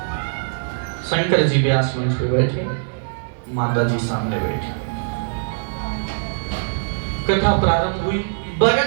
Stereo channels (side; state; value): left; silent; digital silence